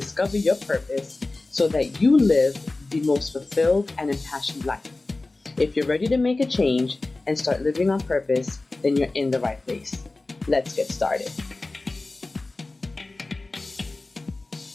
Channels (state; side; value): quieter; right; 3.2 dB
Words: your purpose so that you live the most fulfilled and impassioned life. If you're ready to make a change and start living on purpose, then you're in the right place. Let's get started.